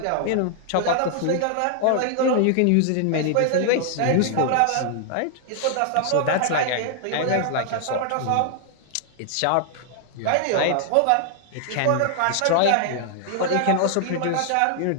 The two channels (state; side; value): different; both; correlation 0.00